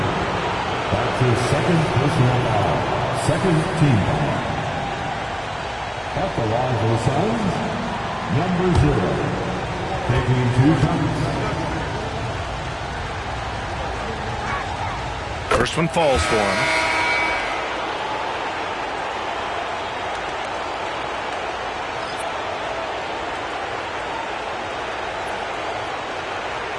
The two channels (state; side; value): identical; both; correlation 1.00